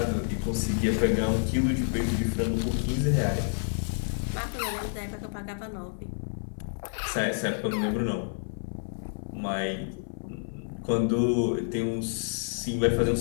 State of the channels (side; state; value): right; silent; 57 dB below the other